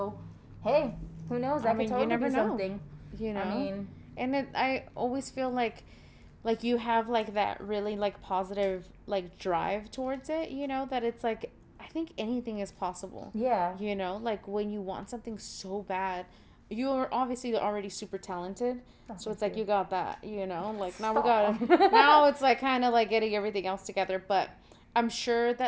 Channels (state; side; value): identical; both; correlation 1.00